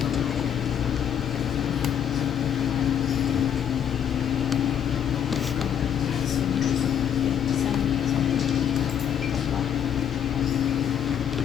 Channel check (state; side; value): quieter; right; 9.0 dB